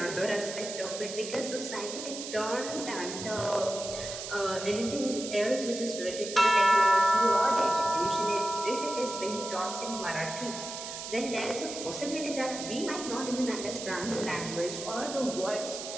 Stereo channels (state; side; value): noise; right; hiss, 8 dB below the sound